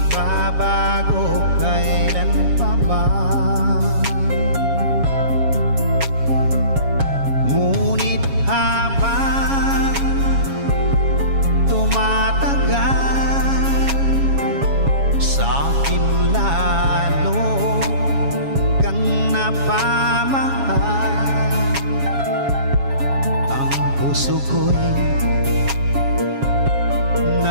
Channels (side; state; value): left; late; 7.3 ms